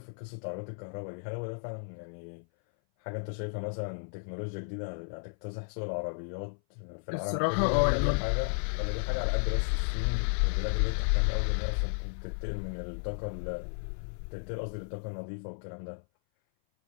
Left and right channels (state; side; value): silent; right; 56 dB below the other